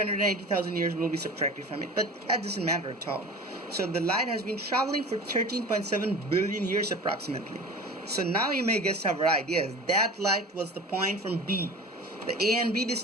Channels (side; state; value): both; normal; correlation 0.37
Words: years will be subtracted from it, but that doesn't matter at all. So the light has been traveling for 13.7 billion years approximately. So now you may guess our right. Yes, that light was the point from B. The A and B